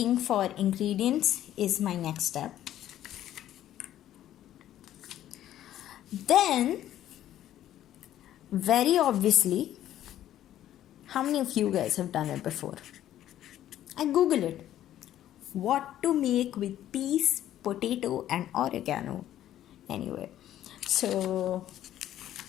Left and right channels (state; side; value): quieter; right; 12.3 dB